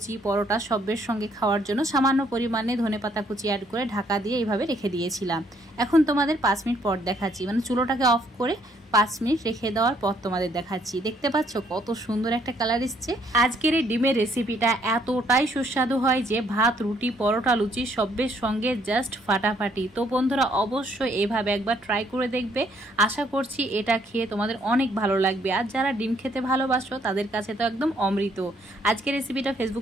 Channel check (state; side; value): normal; both; correlation 0.68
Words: পরোটা সবের সঙ্গে খাওয়ার জন্য সামান্য পরিমাণে ধনেপাতা কুচি অ্যাড করে ঢাকা দিয়ে এইভাবে রেখে দিয়েছিলাম। এখন তোমাদের 5 মিনিট পর দেখাচ্ছি, মানে চুলোটাকে অফ করে 5 মিনিট রেখে দেওয়ার পর তোমাদের দেখাচ্ছি। দেখতে পাচ্ছ কত সুন্দর একটা কালার এসছে। আজকের এই ডিমের রেসিপিটা এতটাই সুস্বাদু হয় যে ভাত, রুটি, পরোটা, লুচি সবের সঙ্গে জাস্ট ফাটাফাটি। তো বন্ধুরা অবশ্যই এইভাবে একবার ট্রাই করে দেখবে। আশা করছি এটা খেয়ে তোমাদের অনেক ভালো লাগবে। আর যারা ডিম খেতে ভালোবাসো তাদের কাছে তো একদম অমৃত। আজকের রেসিপিটা